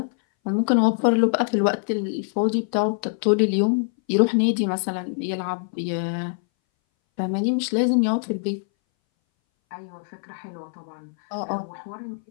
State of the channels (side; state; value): right; silent; 61 dB below the other